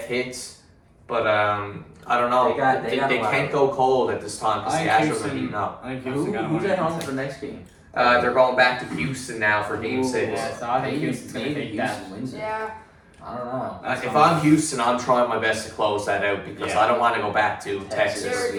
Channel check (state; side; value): identical; both; correlation 1.00